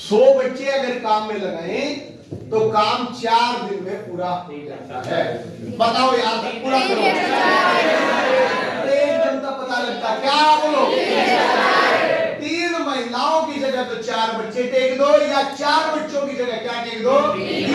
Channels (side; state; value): both; identical; correlation 1.00